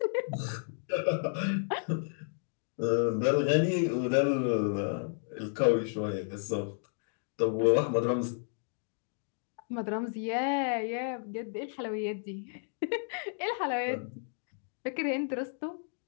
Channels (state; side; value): silent; right; digital silence